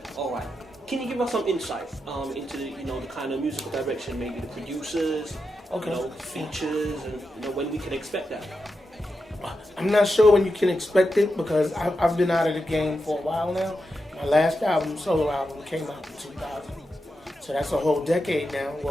All right. Can you give us some insight into the, you know, the kind of musical direction, maybe the producers, you know, features, and you know when we can expect that? I'm not sure when you can expect it because I've been out of the game for a while now. My last album, solo album, came out in 2000, so that's a whole decade now.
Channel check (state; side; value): normal; both; correlation 0.88